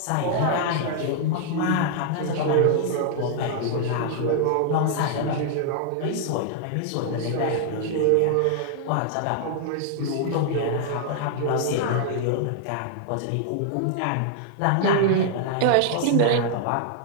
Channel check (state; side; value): different; both; correlation -0.01